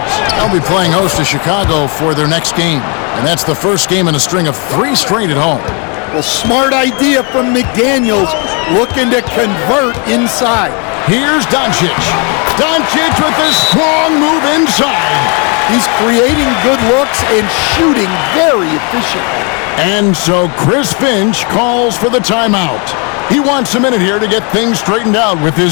They'll be playing host to Chicago for their next game. And that's the first game in a string of 3 straight at home. Well, smart idea from McDaniels, looking to convert inside. Here's Doncic. Doncic with a strong move inside. He's creating good looks and shooting very efficiently. And so Chris Finch calls for the timeout. He wants a minute here to get things straightened out with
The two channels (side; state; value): right; quieter; 34.6 dB